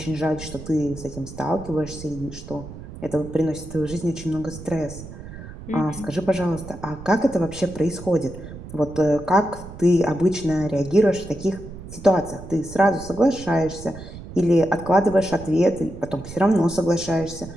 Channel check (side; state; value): right; noise; rumble, 13 dB below the sound